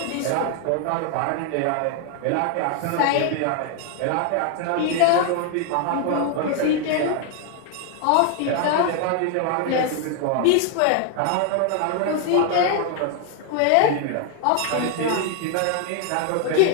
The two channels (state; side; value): different; both; correlation 0.00